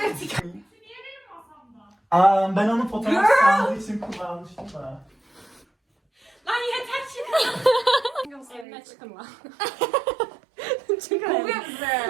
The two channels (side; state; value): left; drops out; at 8.7 s